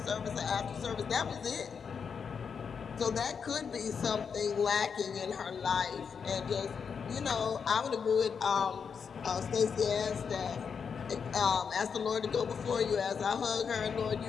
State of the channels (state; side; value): quieter; right; 6.3 dB